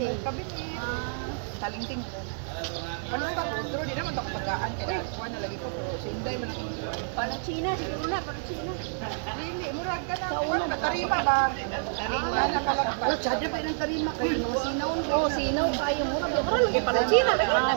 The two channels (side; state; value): left; silent; 59 dB below the other